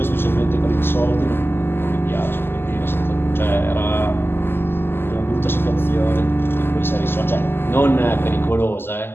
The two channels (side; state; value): right; late; 0.11 ms